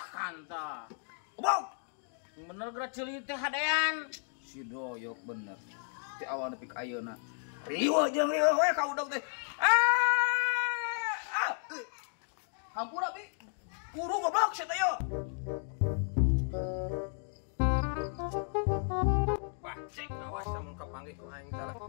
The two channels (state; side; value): silent; right; 55 dB below the other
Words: Bang. Bener gerak ceuli teh hadean. Si Doyok bener. Ti awal nepi ka ayeuna. Riwa jeung riwa we ka udang teh. Hampura bi. Kuru goblok sia teh yo. Bajek awas sama kepanggih ku aing salah.